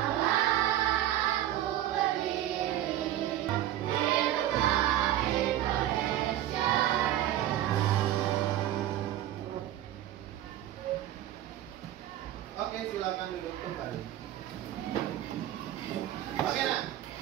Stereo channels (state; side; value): quieter; left; 12.8 dB